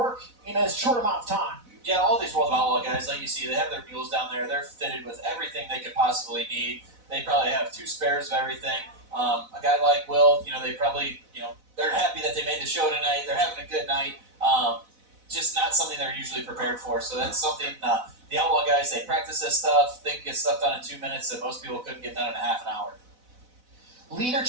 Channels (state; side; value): late; left; 4.0 ms